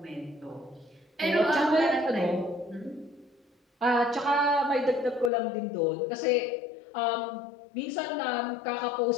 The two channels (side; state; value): right; drops out; at 5.3 s